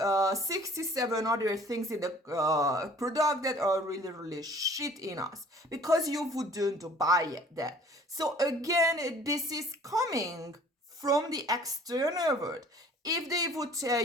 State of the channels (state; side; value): normal; both; correlation 0.51